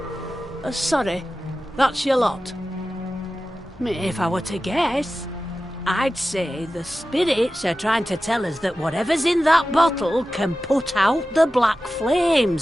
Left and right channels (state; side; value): normal; both; correlation 0.94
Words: Sorry, that's your lot. If I were to guess, I'd say the spirits are trying to tell us that whatever's in that bottle can put out the black flames